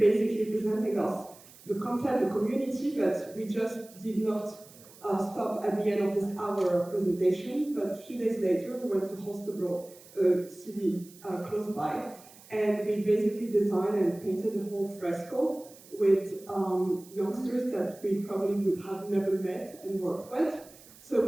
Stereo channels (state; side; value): noise; right; hiss, 22 dB below the sound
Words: presenting us the concept, the community, but we just did not stop at the end of this hour of presentation. But a few days later, we went to Holstebro, a city close by, and we basically designed and painted the whole fresco with youngsters that we probably would have never met and worked with. So it